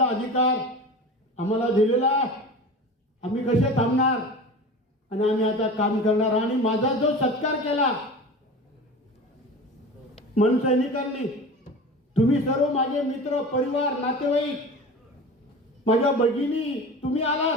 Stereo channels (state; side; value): normal; both; correlation 0.34